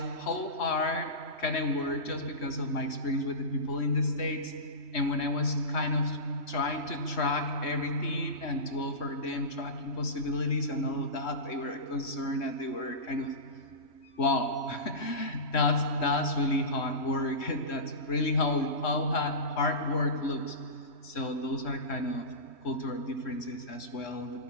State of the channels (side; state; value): right; late; 3.1 ms